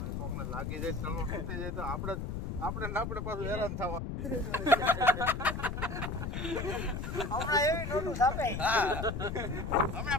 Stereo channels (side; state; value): left; noise; rumble, 4 dB below the sound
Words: કોકને લાગી જાય ચલો તૂટી જાય તો આપણે પાછું હેરાન થવા હમણાં એવી નોટું છાપે હા